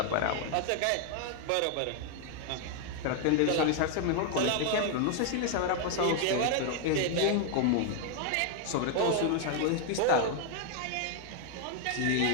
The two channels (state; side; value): different; both; correlation 0.00